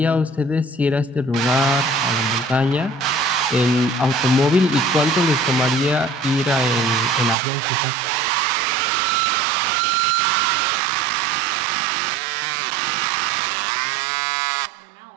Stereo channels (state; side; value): drops out; left; at 7.4 s